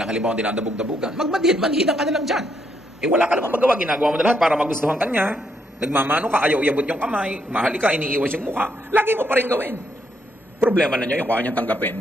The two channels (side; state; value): both; normal; correlation 0.75